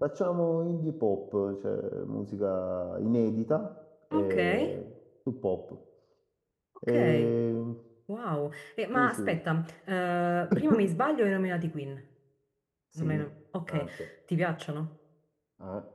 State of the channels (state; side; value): identical; both; correlation 1.00